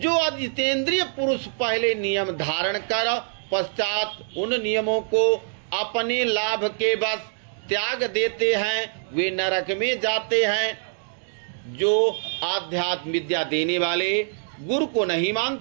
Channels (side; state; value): left; silent; 60 dB below the other